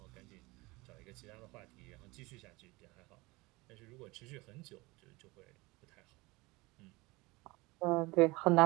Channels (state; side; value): quieter; left; 23.1 dB